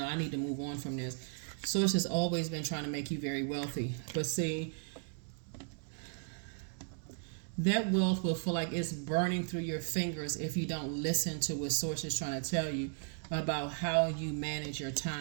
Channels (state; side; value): silent; left; 54 dB below the other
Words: I need to move on from this. Source has always been trying to make you very wealthy. But see, that wealth will feel like it's burning through your fingers if you don't listen to what Source is trying to tell you about how you manage your